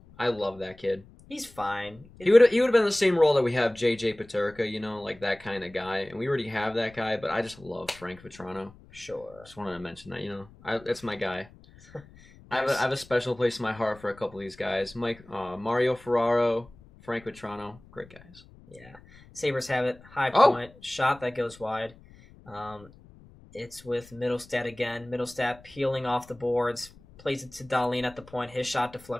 I love that kid. He's fine. He would have been the same role that we have JJ Peterka, you know, like that kind of guy. And we already have that guy, but I just love Frank Vetrano. Sure. Just wanted to mention that, you know. That's my guy. I have a special place in my heart for a couple of these guys. Mario Ferraro, Frank Vetrano, great guys. Yeah. Sabres have it. High point. Shot that goes wide. It's with Middlestat again. Middlestat peeling off the boards. Plays it to Dahlin at the point. His shot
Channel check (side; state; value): left; noise; rumble, 23 dB below the sound